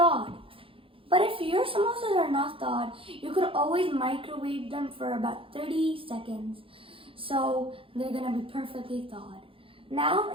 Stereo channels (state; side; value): late; left; 0.26 ms